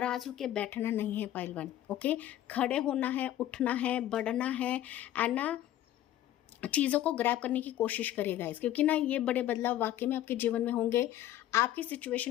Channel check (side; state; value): right; quieter; 13.0 dB